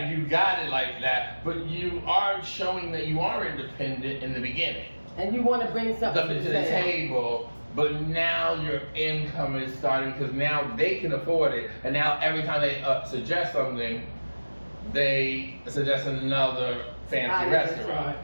You got it like that, but you are showing that you are independent in the beginning. And you want to bring something to the table, but now your income is starting because now they can afford it, and now every time they suggest something, they suggest another fancy restaurant.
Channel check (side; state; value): both; inverted; correlation -1.00